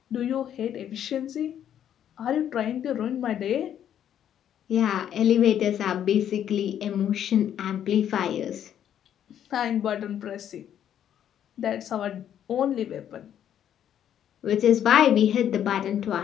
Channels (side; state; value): right; quieter; 10.0 dB